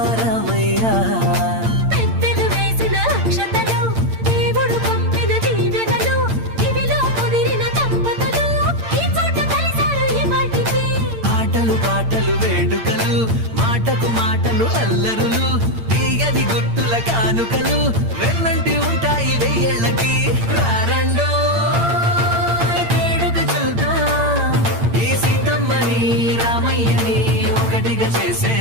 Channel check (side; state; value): left; late; 8.8 ms